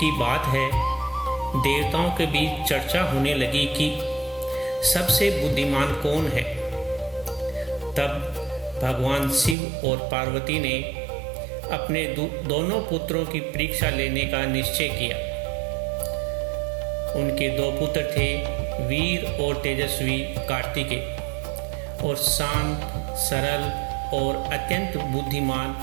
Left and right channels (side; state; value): left; drops out; at 9.6 s